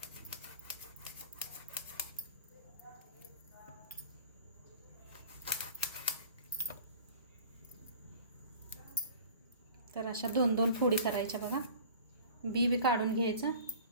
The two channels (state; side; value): inverted; both; correlation -0.44